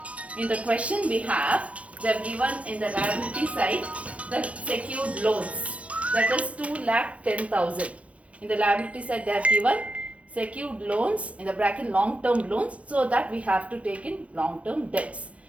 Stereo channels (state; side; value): late; left; 0.064 ms